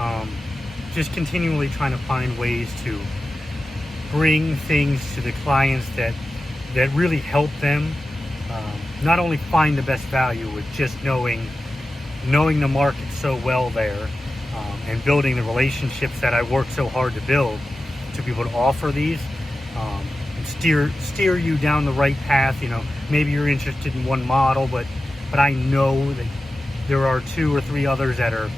Just continually trying to find ways to bring things to the clients that really help them not only find the best value with just knowing the market so well there, and building the relationships that I work so hard to build to be able to offer these, and steer you down the right path. You know, maybe you're interested in one model, but I know that there are 2 or 3 others that are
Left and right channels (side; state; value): both; normal; correlation 0.93